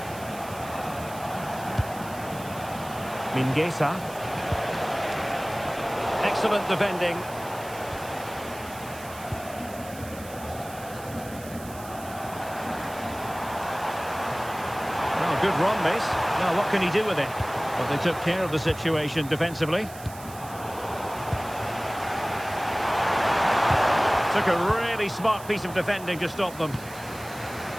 Mingueza. Excellent defending. Good run, this. Now, what can he do with it? Well, they took care of the situation defensively. Took a really smart piece of defending to stop them.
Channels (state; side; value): noise; right; hiss, 17 dB below the sound